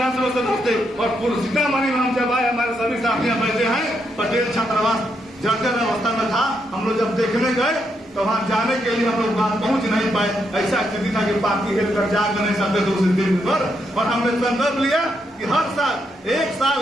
सदस्य थे और सीतामढ़ी में हम जब आए, हमारे सभी साथियां बैठे हैं। पटेल छात्रावास जर्जर अवस्था में था। हम लोग जब देखने गए तो वहां जाने के लिए हम लोग वहां पहुंच नहीं पाए। ऐसा स्थिति था कि पार्टी हेल कर जा नहीं सकते थे उस दिन पर। और हमने संकल्प लिया कि हर साल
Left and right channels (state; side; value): normal; both; correlation 0.80